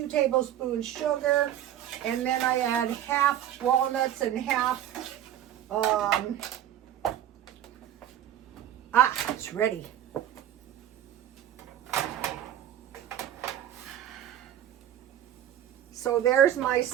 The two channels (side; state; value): left; quieter; 11.3 dB